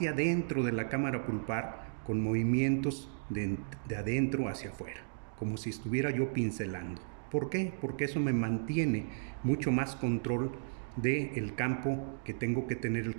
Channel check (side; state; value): left; silent; digital silence